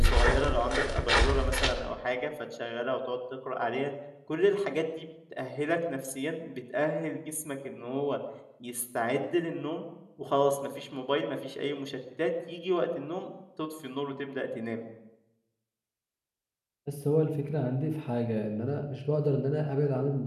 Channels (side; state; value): both; identical; correlation 1.00